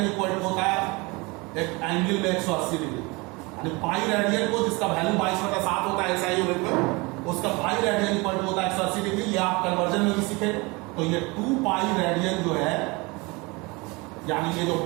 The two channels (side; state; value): left; quieter; 25.9 dB